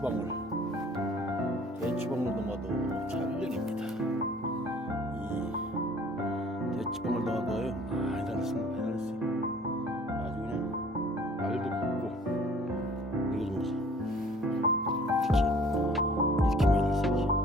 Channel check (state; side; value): normal; both; correlation 0.52